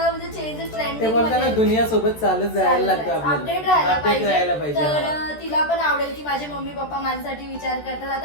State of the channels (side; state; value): right; late; 13 ms